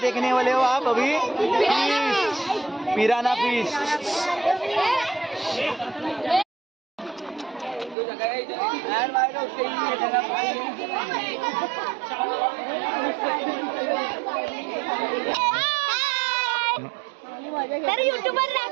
वाले हो आप अभी? Fish, पिराना fish. तर युट्यूबर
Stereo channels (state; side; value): drops out; left; at 8.0 s